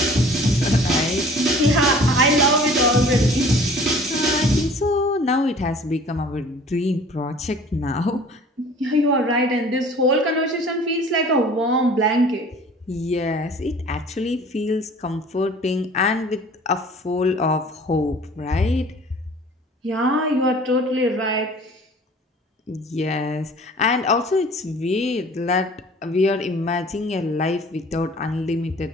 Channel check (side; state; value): both; normal; correlation 0.48